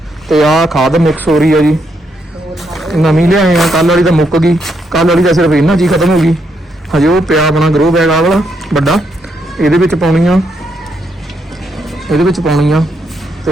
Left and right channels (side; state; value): both; normal; correlation 0.78